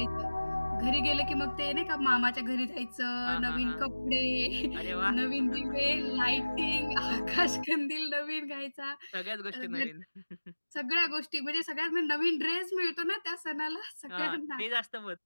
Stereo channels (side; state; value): both; inverted; correlation -1.00